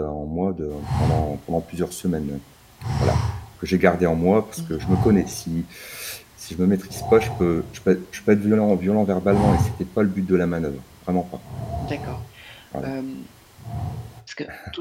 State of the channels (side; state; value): both; identical; correlation 1.00